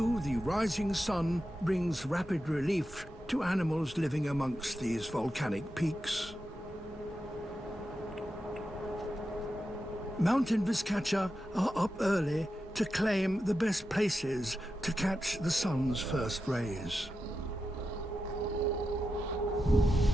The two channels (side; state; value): both; normal; correlation 0.89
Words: the rising sun brings rapid relief to animals living amongst these volcanic peaks. Mountain Vizcacha are up early to claim the best places to catch the sun's first rays.